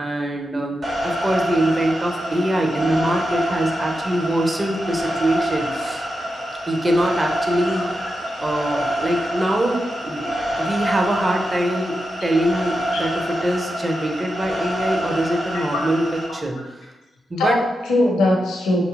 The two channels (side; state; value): both; normal; correlation 0.88